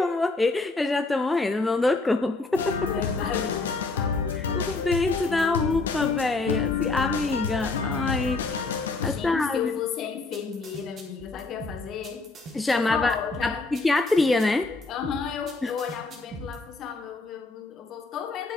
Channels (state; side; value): quieter; right; 3.6 dB